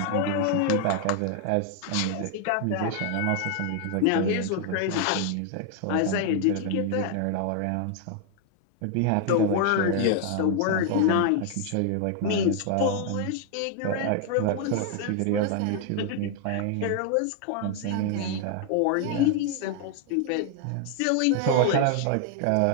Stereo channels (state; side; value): different; both; correlation 0.00